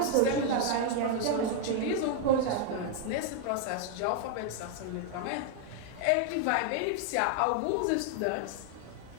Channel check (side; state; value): both; different; correlation 0.00